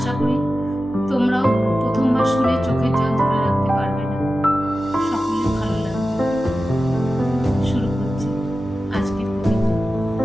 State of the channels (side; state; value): both; normal; correlation 0.94